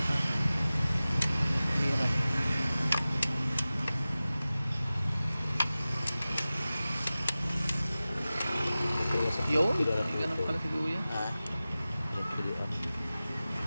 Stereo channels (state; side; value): inverted; both; correlation -0.96